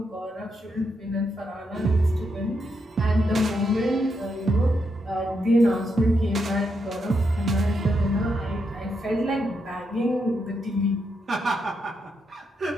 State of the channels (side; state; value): both; normal; correlation 0.81